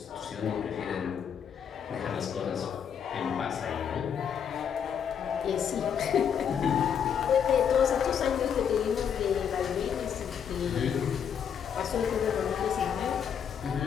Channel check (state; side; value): quieter; right; 7.9 dB